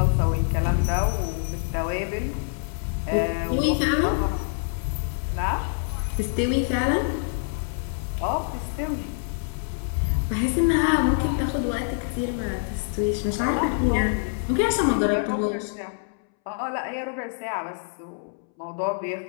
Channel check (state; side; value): silent; right; 61 dB below the other